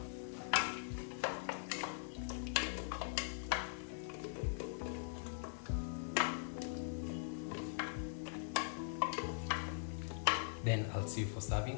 Then I'll see you for serving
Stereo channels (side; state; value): right; silent; digital silence